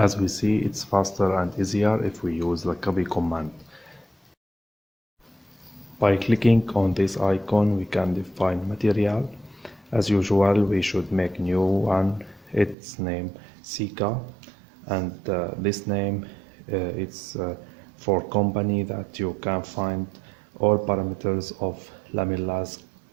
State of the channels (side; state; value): left; drops out; at 12.8 s